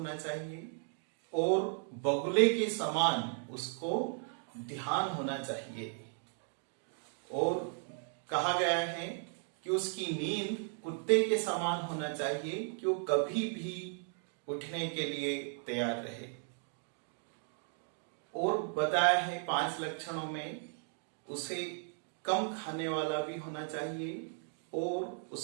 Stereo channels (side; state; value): left; silent; 54 dB below the other